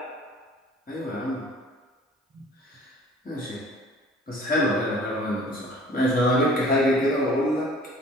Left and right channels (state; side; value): normal; both; correlation 0.50